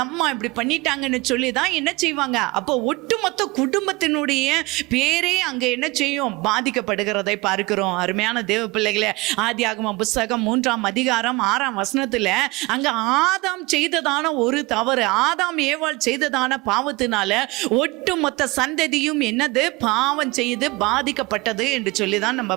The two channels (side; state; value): left; quieter; 23.6 dB